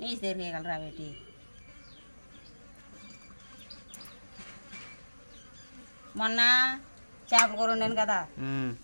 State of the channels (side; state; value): both; inverted; correlation -1.00